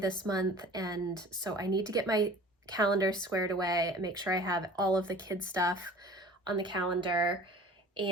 month, and so I need to get my calendar squared away and make sure I have all of the kids' stuff on the calendar.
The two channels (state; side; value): normal; both; correlation 0.44